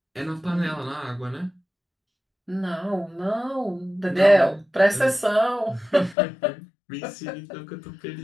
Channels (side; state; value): right; drops out; at 6.2 s